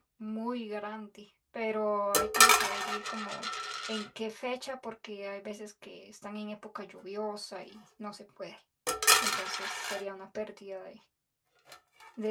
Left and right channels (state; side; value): identical; both; correlation 1.00